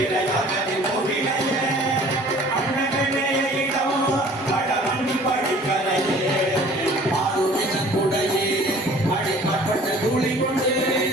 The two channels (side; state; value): both; normal; correlation 0.50